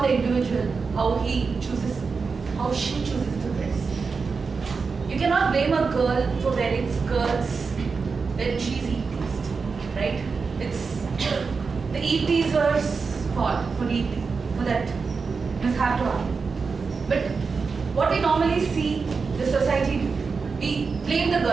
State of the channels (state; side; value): quieter; left; 4.9 dB